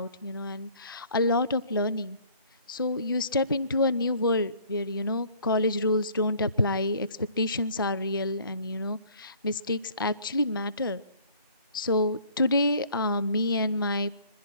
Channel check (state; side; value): inverted; both; correlation -0.56